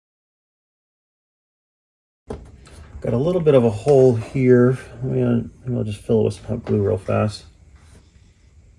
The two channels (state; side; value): identical; both; correlation 1.00